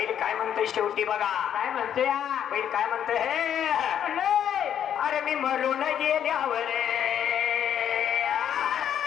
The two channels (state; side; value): quieter; right; 9.5 dB